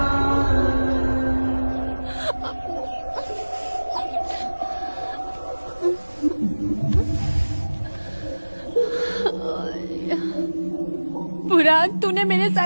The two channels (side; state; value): both; inverted; correlation -1.00